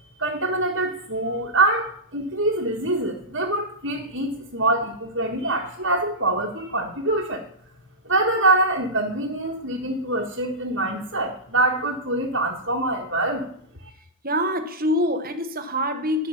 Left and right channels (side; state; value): both; normal; correlation -0.11